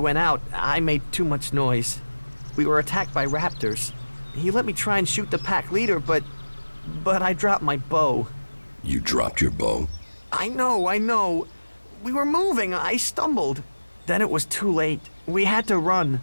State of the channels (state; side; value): inverted; both; correlation -1.00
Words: out, I made too much noise. We were attacked by raptors. He let me try and shoot the pack leader, but I dropped my bow. You dropped your bow? I know. We were moving, I stumbled. Then it was too late. We had to run.